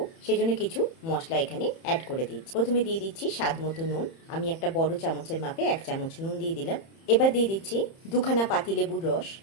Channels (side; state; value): right; late; 30 ms